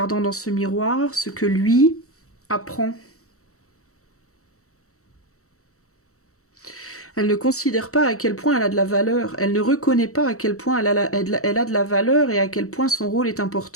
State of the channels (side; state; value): right; late; 0.64 ms